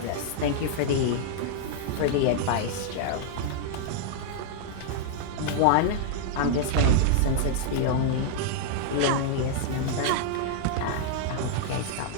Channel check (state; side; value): different; both; correlation -0.01